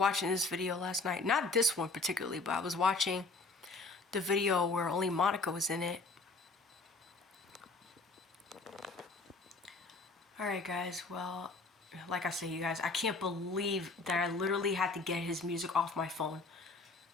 this video last night. Not this one particularly, but I was watching the video where only Monica was in it. Alright guys, well, like I say, you guys, I can't believe that I literally had to get his music off my phone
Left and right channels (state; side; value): quieter; right; 3.6 dB